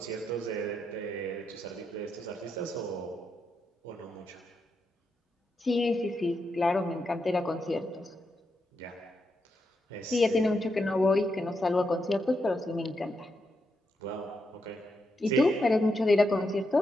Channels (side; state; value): both; normal; correlation 0.83